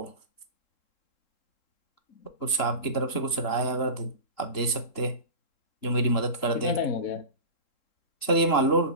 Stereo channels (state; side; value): late; right; 3.7 ms